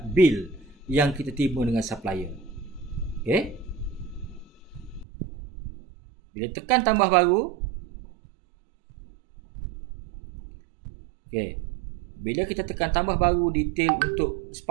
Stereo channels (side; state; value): left; drops out; at 5.1 s